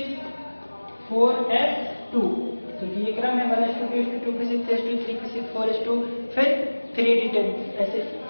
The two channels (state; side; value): inverted; both; correlation -1.00